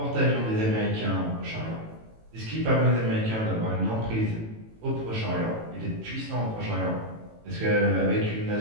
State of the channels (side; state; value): left; late; 18 ms